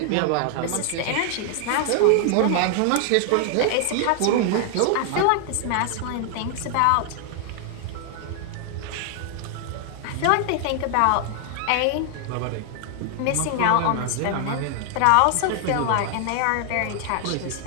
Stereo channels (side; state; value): both; different; correlation 0.00